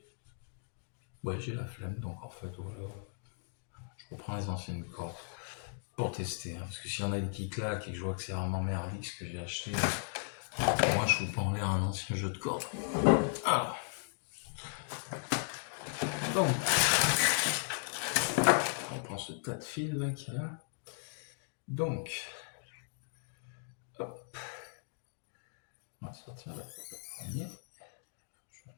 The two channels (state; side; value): silent; right; digital silence